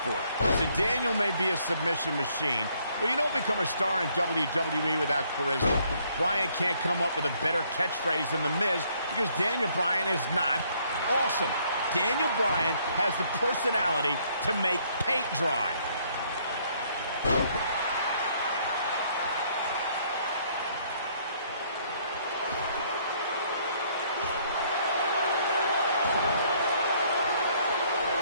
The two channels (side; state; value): both; inverted; correlation -0.66